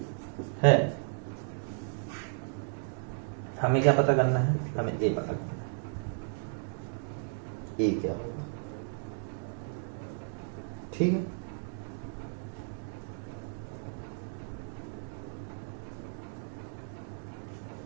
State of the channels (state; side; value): silent; left; digital silence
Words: है। हमें क्या पता करना है, हमें ए पता करना है, ए क्या होगा। ठीक है,